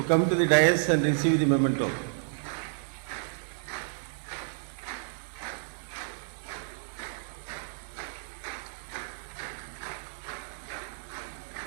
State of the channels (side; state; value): left; silent; digital silence